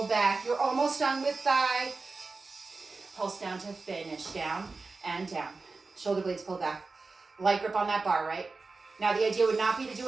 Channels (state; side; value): quieter; left; 3.9 dB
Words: back. You're almost done with thigh. Pulse down to finish. Down and down. Shoulder blades pulled back. Light grip on that bar, right? Now the idea would not be to